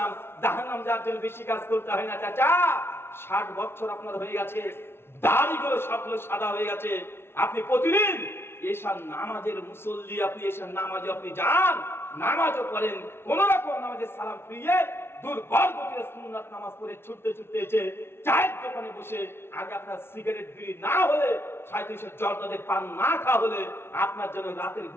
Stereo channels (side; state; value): right; late; 0.12 ms